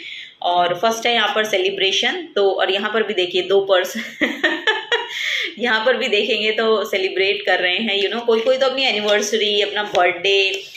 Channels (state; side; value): identical; both; correlation 1.00